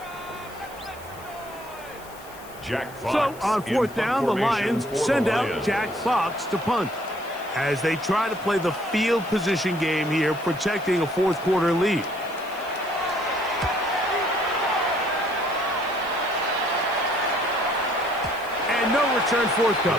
So on fourth down, the Lions send out Jack Fox to punt as they try to play the field position game here, protecting a fourth quarter lead. And no return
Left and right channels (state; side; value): noise; left; hiss, 21 dB below the sound